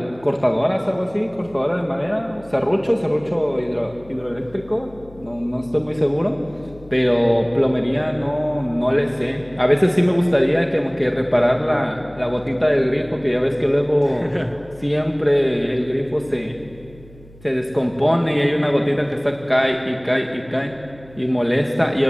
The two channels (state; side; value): noise; left; hum, 23 dB below the sound